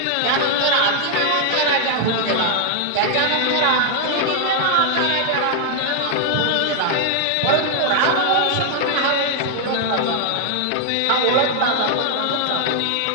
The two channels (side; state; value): both; different; correlation 0.00